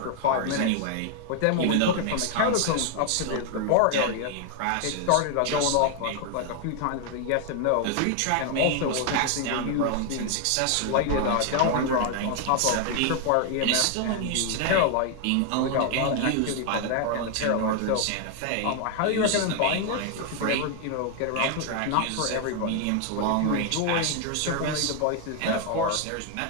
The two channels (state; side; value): different; both; correlation 0.00